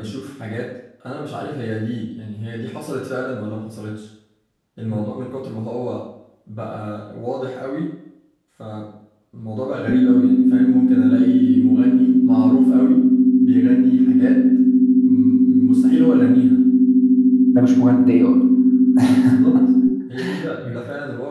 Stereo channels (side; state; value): both; identical; correlation 1.00